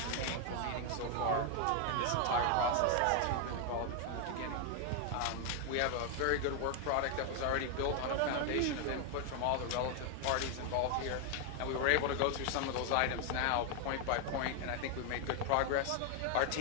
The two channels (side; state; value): both; different; correlation 0.00